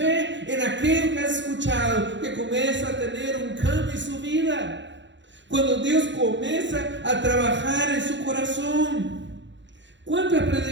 en aquello que has escuchado que comienza a tener un cambio en su vida. Cuando Dios comienza a trabajar en su corazón. ¿Cuántas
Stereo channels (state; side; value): late; left; 0.53 ms